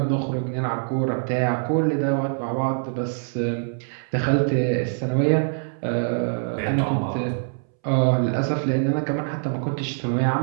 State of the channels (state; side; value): silent; left; 63 dB below the other